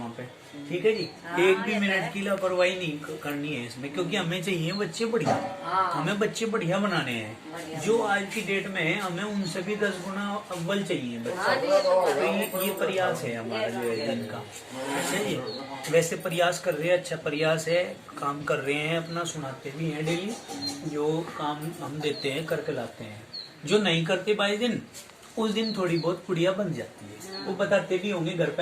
पे, ठीक है जी। एक भी मिनट की लापरवाही नहीं करनी है इसमें, क्योंकि हमें चाहिए बच्चे बढ़िया, हमें बच्चे बढ़िया बनाने हैं। जो आज की डेट में है हमें उनसे भी 10 गुना अव्वल चाहिए बच्चे। तो ये प्रयास है हमारा जो है जिनका। अच्छा जी, वैसे प्रयास कर रहे हैं, अच्छा प्रयास है, काम कर रहे हैं, अपना सुनाते भी हैं डेली, जो काम हम देते हैं करके लाते हैं। जो नहीं करते 22 दिन उस दिन थोड़ी बहुत पुड़िया बन जाती है, वो बताते भी होंगे घर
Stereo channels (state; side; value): identical; both; correlation 1.00